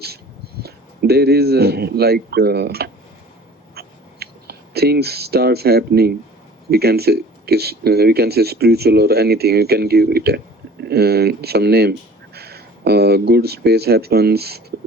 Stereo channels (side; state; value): both; normal; correlation 0.47